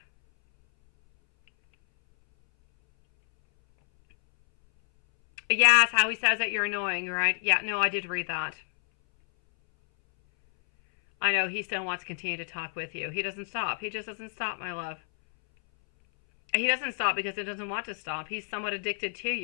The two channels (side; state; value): right; silent; 59 dB below the other